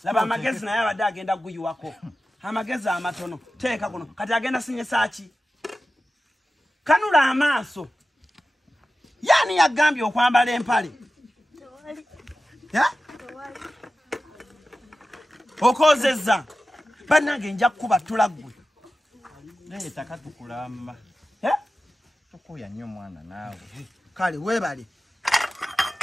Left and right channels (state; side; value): normal; both; correlation 0.94